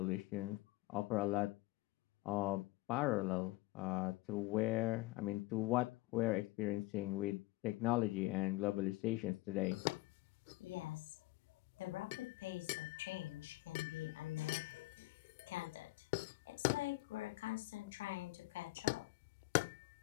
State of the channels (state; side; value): quieter; right; 20.3 dB